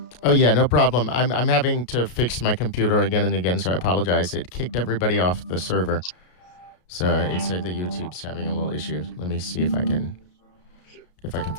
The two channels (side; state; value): right; late; 33 ms